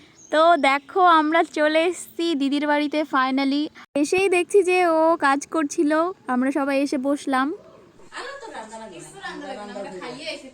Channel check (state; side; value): identical; both; correlation 1.00